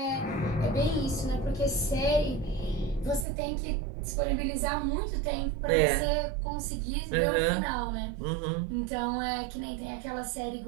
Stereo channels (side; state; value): left; drops out; at 3.2 s